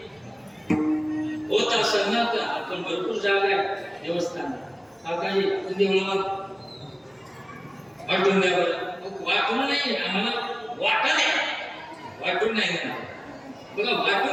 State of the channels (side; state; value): both; identical; correlation 1.00